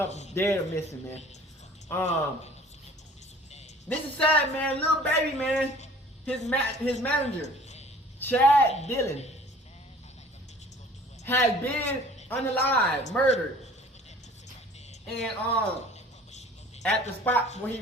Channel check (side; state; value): both; normal; correlation 0.49